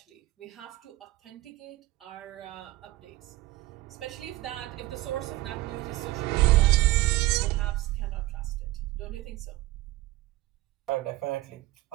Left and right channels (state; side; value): quieter; left; 17.9 dB